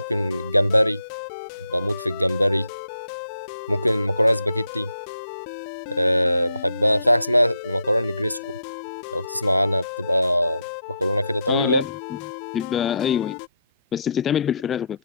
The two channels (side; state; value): both; inverted; correlation -0.75